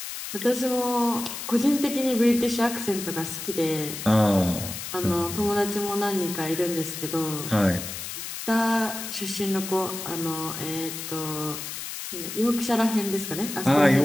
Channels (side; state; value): left; noise; hiss, 7 dB below the sound